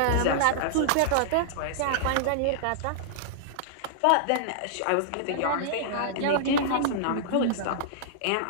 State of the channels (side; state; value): both; different; correlation -0.01